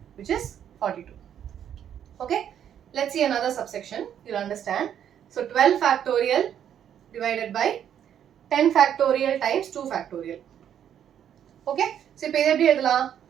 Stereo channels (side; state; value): left; quieter; 9.5 dB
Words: which is 42. Okay, let's see another subsection. You'll understand. So 12 factorial divided by 10 factorial times 2 factorial. Okay, so இப்போ எப்படி எழுதலாம்?